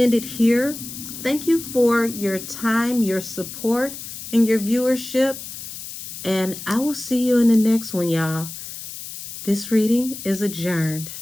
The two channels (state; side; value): noise; left; hiss, 10 dB below the sound